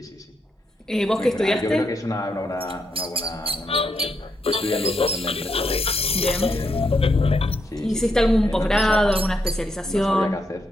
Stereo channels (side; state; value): both; normal; correlation 0.79